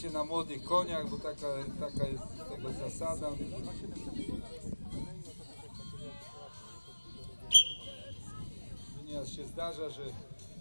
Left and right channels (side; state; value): both; inverted; correlation -1.00